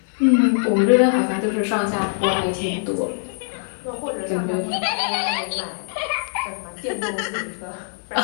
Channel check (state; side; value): silent; right; digital silence